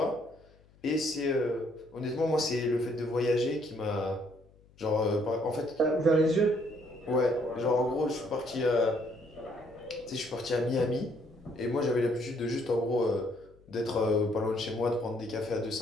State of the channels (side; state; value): left; noise; hum, 28 dB below the sound